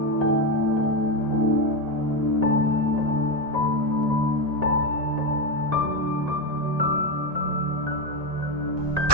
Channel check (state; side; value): late; left; 1.8 ms